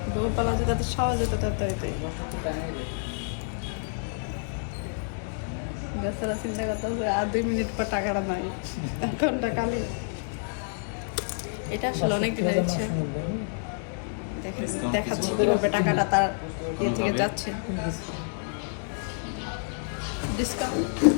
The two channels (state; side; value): silent; right; digital silence